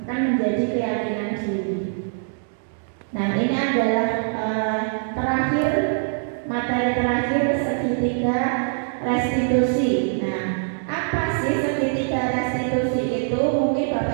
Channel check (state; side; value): silent; left; digital silence